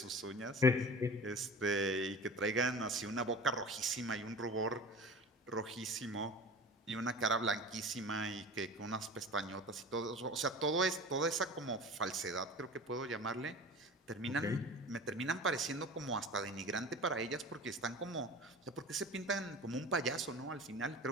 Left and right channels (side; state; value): both; normal; correlation 0.37